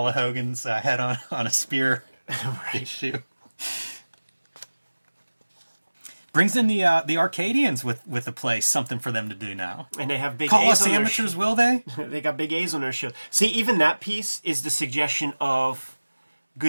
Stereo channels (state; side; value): inverted; both; correlation -1.00